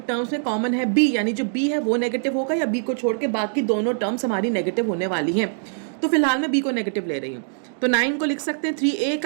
टर्म्स में कॉमन है b, यानी जो b है वो नेगेटिव होगा, या b को छोड़ के बाकी दोनों टर्म्स हमारी नेगेटिव होने वाली हैं। तो फिलहाल मैं b को नेगेटिव ले रही हूँ। तो 9 को लिख सकते हैं 3a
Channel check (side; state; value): left; silent; digital silence